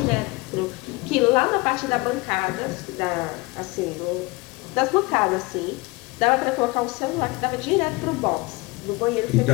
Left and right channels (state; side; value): quieter; right; 24.2 dB